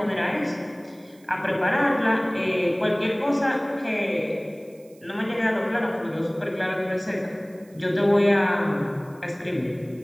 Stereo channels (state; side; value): noise; right; hiss, 29 dB below the sound